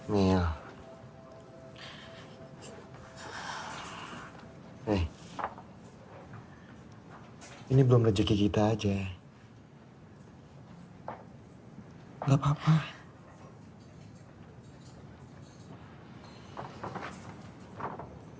Mil. Ini belum rezeki kita aja. Gak apa-apa.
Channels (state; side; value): identical; both; correlation 1.00